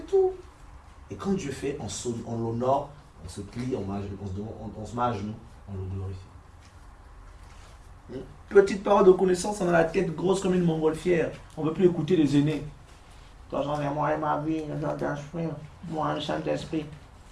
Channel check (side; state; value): both; identical; correlation 1.00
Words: tout. Et quand Dieu fait, on l'honore, on se plie, on se met à genoux, on le glorifie. Petite parole de connaissance, on a la tête grosse comme une montgolfière. On ne veut plus écouter les aînés. Toi, j'en ai moi et ma vie, moi, un Saint-Esprit.